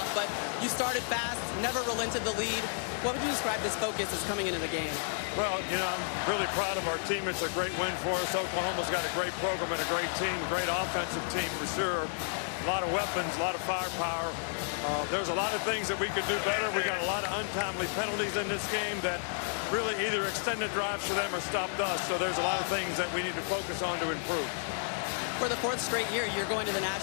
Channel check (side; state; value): right; silent; digital silence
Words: but you started fast, never relented the lead. What would you describe this focus as coming into the game? Well, you know, I'm really proud of our team. It's a great win for us. Oklahoma's got a great program and a great team, a great offensive team for sure. A lot of weapons, a lot of firepower. There's a lot of things that we could do better. We got a lot of untimely penalties in this game that really either extended drives for them or stopped us. So there's a lot of things that we need to focus on to improve. For the 4th straight year, you're going to the